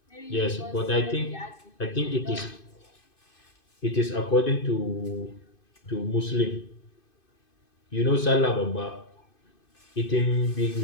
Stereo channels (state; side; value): late; right; 2.5 ms